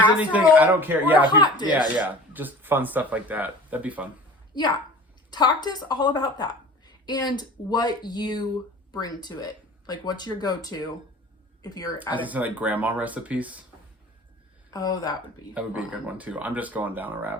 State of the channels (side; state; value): both; normal; correlation 0.42